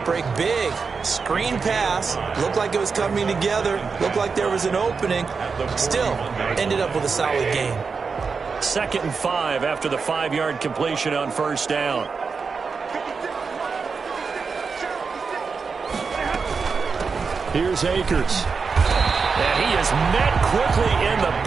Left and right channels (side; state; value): left; quieter; 5.1 dB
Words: break big. Screen pass, looked like it was coming together, looked like there was an opening. Still, ended up with a solid gain. 2nd and 5 after the 5-yard completion on 1st down. Here's Akers. And he is met quickly in the